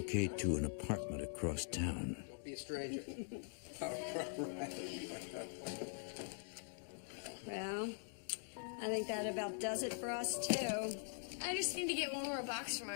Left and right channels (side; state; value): right; silent; digital silence